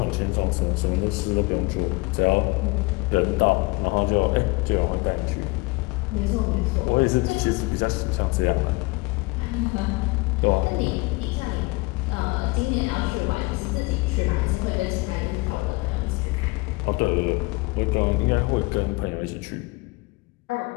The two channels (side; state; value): right; quieter; 24.9 dB